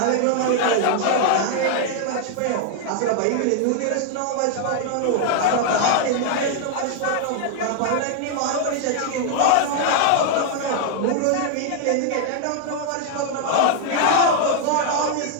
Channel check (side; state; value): both; different; correlation 0.00